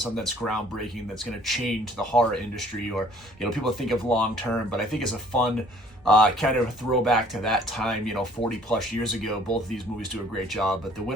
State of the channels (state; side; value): normal; both; correlation 0.56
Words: that's groundbreaking, that's going to change the horror industry or, people think of long term. But I think it's a fun kind of a throwback to that time, 40 plus years ago. Both of these movies do a great job, but the